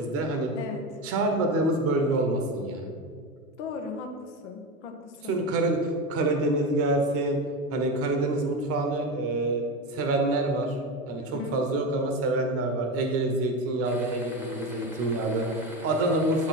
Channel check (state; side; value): normal; both; correlation 0.20